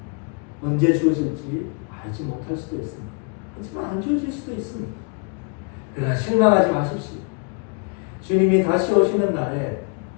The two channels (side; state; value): right; quieter; 36.6 dB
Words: 언제 주어질지 알지 못할 수도 있습니다. 하지만 안 주어질 수도 있습니다. 그러나 실망하지 마십시오. 주님이 다시 오시는 날에